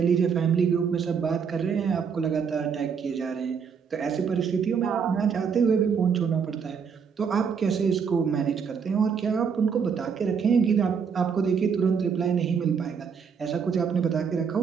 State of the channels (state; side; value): quieter; left; 6.4 dB